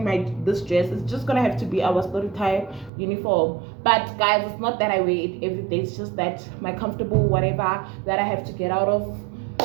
this dress. It's just gonna have to be our story time uniform. But guys, it's not that I wear it every day. It's just that my comfortable whatever that I have to get out of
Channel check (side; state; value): left; drops out; at 2.9 s